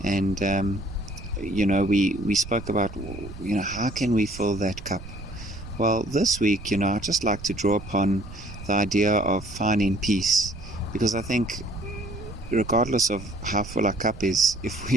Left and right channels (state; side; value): noise; right; rumble, 14 dB below the sound